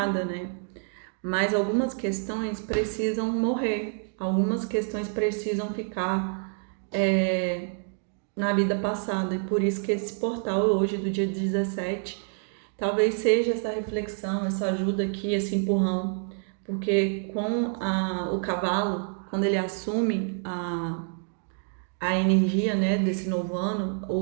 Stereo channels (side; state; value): left; silent; 55 dB below the other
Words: né? Mas algumas questões precisam morrer, algumas questões precisam ficar na vida passada. E por isso que esse portal hoje, do dia 17, talvez seja essa reflexão, essa ajuda aqui, esse empurrão. Porque com o cavalo, quando ele assume a energia, né, desse novo ano,